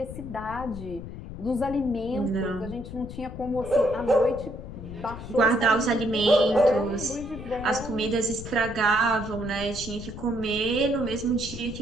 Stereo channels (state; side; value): noise; left; rumble, 11 dB below the sound